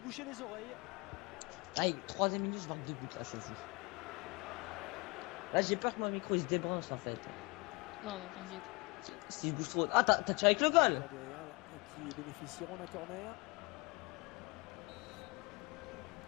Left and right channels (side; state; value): right; quieter; 28.0 dB